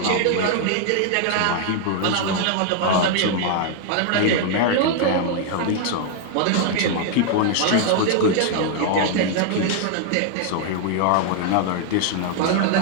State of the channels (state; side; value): different; both; correlation 0.00